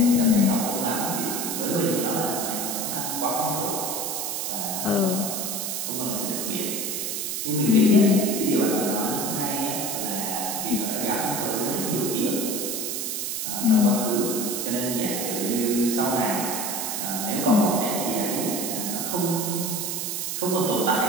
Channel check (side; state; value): right; noise; hiss, 2 dB below the sound